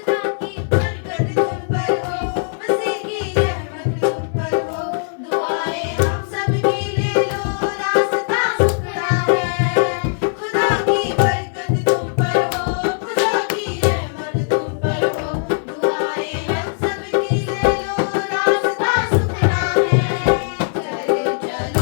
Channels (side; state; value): right; silent; digital silence